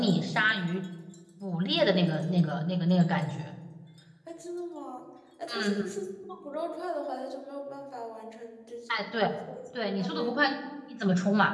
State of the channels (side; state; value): both; identical; correlation 1.00